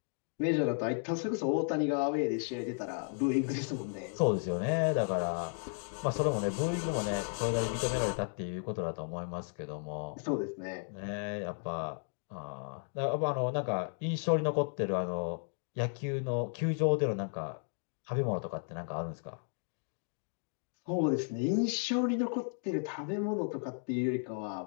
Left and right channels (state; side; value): silent; right; 55 dB below the other